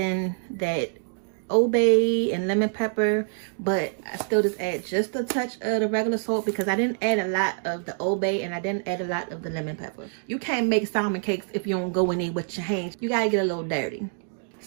that Old Bay and lemon pepper, but I still just add just a touch of the regular salt because I didn't add a lot of the Old Bay and I didn't add a lot of the lemon pepper. You can't make salmon cakes if you don't go in there with your hands. You gotta get a little dirty.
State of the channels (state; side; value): silent; left; digital silence